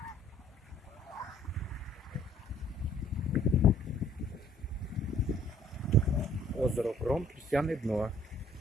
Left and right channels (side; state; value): both; normal; correlation 0.58